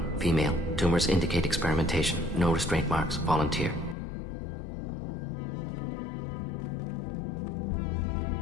female. Tumors indicate experimentation. No restraint marks. Volunteer.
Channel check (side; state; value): right; drops out; at 4.0 s